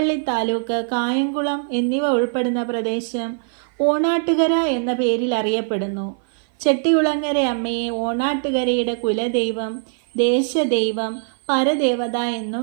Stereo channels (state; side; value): silent; left; 55 dB below the other